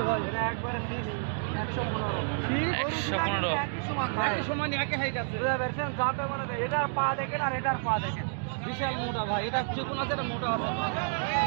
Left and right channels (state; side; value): silent; left; digital silence